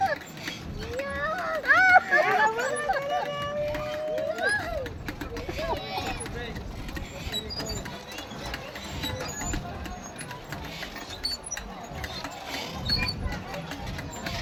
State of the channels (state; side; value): identical; both; correlation 1.00